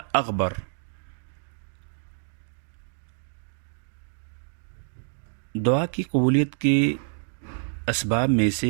اغبر. دعا کی قبولیت کے اسباب میں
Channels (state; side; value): silent; left; 60 dB below the other